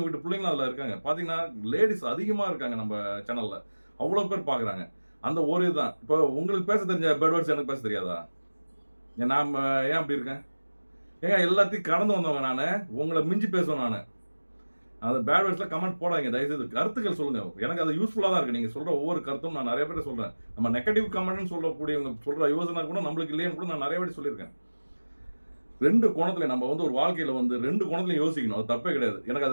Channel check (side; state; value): both; inverted; correlation -1.00